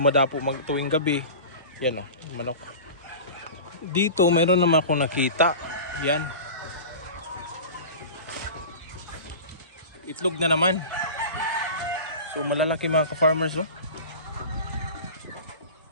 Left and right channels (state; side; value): inverted; both; correlation -0.34